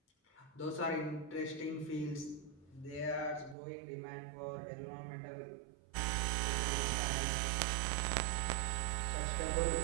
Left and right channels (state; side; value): drops out; left; at 3.6 s